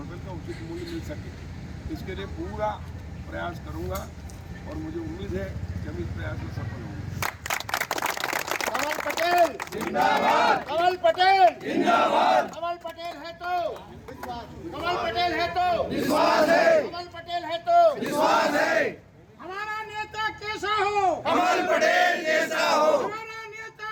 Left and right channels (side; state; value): both; identical; correlation 1.00